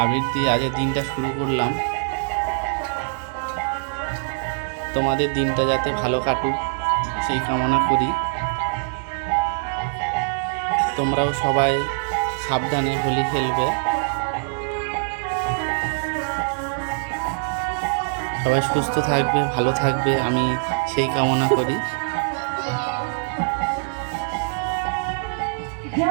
দিয়ে আজকের দিনটা শুরু করলাম। তোমাদের দিনটা যাতে ভালো কাটুক সেই কামনা করি। তোমরাও সবাই সাবধানে হোলি খেলবে। সবাই সুস্থ থাকবে, ভালো থাকবে, আমি সেই কামনা করি।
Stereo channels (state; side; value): silent; left; digital silence